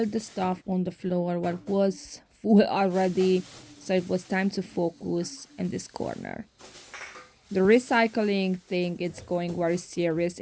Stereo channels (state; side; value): identical; both; correlation 1.00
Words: the stuff on the floor what was full already, so it was time to focus in this corner. The recycling thing is going very serious